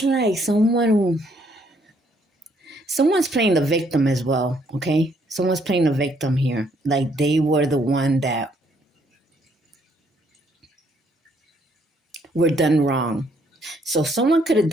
like someone's playing the victim as well, okay? Someone's playing the victim here. Like they were the one that were done wrong. So someone could have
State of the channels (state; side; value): normal; both; correlation 0.68